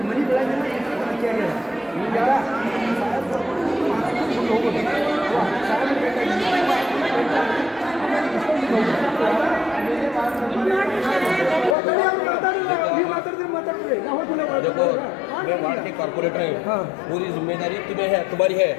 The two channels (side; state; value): right; drops out; at 11.8 s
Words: ಮನೆ ಬೆಳಗಿಲ್ಲ ಕೇಳಿಲ್ಲ. ಈಗ ಸಾಹೇಬ್ ಕರ್ಕೊಂಡು ಮಾತಾಡ್ಕೊಂಡು ಹೋಗೋದು ಸಾಹೇಬ್ देखो मैं वार्ड के कॉर्पोरेटर हैं, पूरी जिम्मेदारी तुम्हें है, तुम्हारी है.